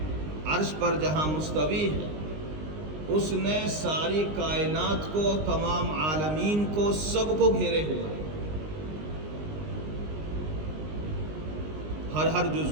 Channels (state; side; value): late; left; 19 ms